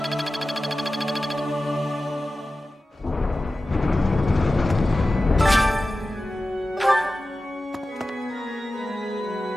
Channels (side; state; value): both; normal; correlation 0.95